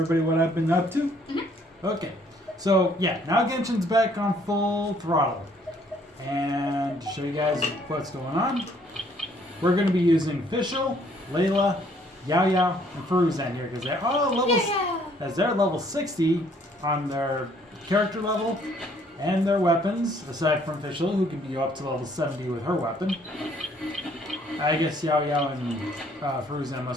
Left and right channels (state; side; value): normal; both; correlation 0.63